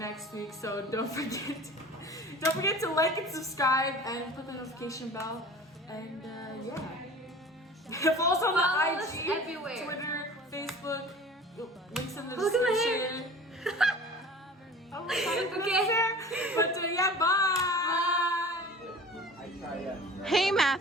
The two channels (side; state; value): both; normal; correlation 0.41